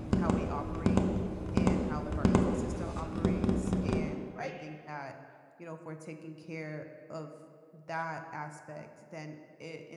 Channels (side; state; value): both; identical; correlation 1.00